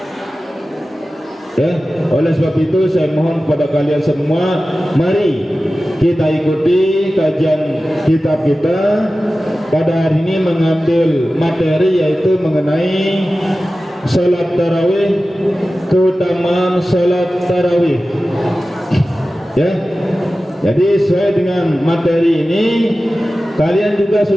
Ya, oleh sebab itu saya mohon kepada kalian semua, mari kita ikuti kajian kitab kita. Pada hari ini mengambil materi yaitu mengenai salat tarawih, keutamaan salat tarawih. Ya, jadi sesuai dengan materi ini, kalian juga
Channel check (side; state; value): both; normal; correlation 0.95